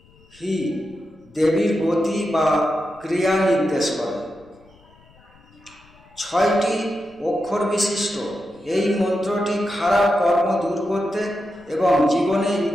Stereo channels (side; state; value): left; noise; rumble, 28 dB below the sound